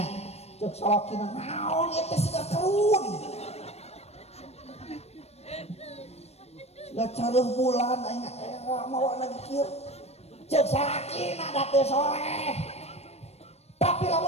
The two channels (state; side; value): late; right; 0.31 ms